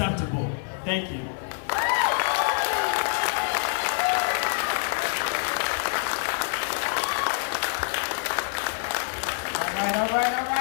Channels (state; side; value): silent; right; digital silence